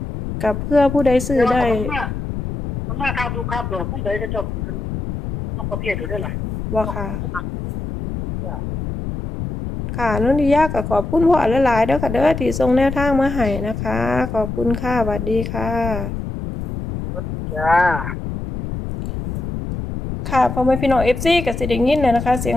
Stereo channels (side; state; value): left; noise; rumble, 5 dB below the sound